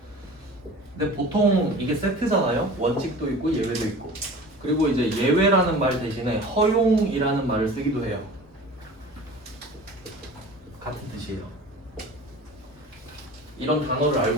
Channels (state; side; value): normal; both; correlation 0.39